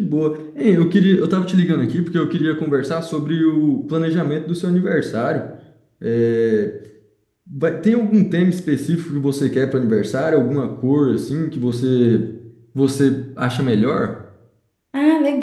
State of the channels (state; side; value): identical; both; correlation 1.00